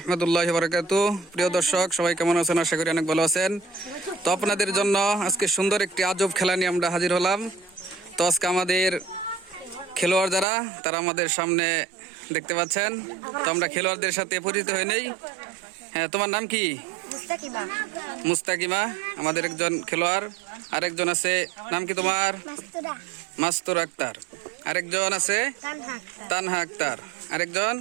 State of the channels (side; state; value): left; drops out; at 10.5 s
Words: বারাকাতুহু। প্রিয় দর্শক, সবাই কেমন আছেন? আশা করি অনেক ভালো আছেন। তো আপনাদের জন্য আজকে সুন্দর একটি আজব খেলা নিয়ে আমরা হাজির হলাম। তো আজকে আমাদের খেলোয়াড় যারা, তারা আমাদের সামনে দেখতে পাচ্ছেন। তো আমরা খেলোয়াড়দের সাথে পরিচিত হয়ে নেই। হ্যাঁ, তোমার নাম কি? মুস্তাকিমা। মুস্তাকিমা আমাদের একজন খেলোয়াড়। আরেকজন আছে, নাম কি তোমার? মাস্তুর আক্তার। আরেকজন আছে তানহা আক্তার। আরেকজন